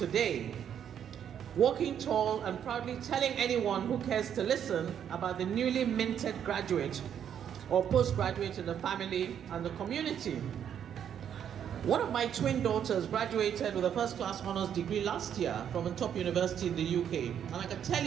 walking tall and proudly telling anyone who cares to listen about the newly minted graduate or postgraduate in the family and the community. One of my twin daughters graduated with a first-class honors degree last year from a top university in the UK. And I can tell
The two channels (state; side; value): quieter; left; 9.0 dB